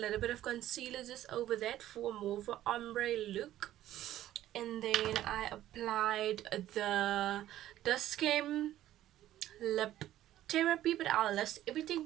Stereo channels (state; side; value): quieter; left; 13.3 dB